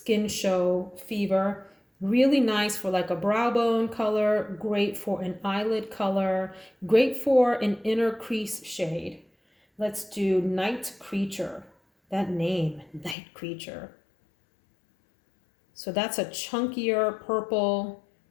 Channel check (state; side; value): drops out; right; at 13.2 s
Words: Show Fever. Really nice for like a brow bone color, great for an eyelid color, great for an inner crease shade. Let's do Night Creature. That name, Night Creature. So that's a chunkier purple